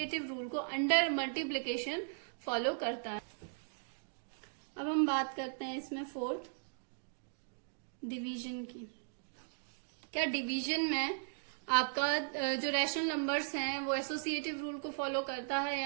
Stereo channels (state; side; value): silent; left; digital silence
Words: रूल को अंडर मल्टीप्लिकेशन फॉलो करता है। अब हम बात करते हैं इसमें फोर्थ, डिवीजन की। क्या डिवीजन में आपका जो रैशनल नंबर्स हैं वो एसोसिएटिव रूल को फॉलो करता है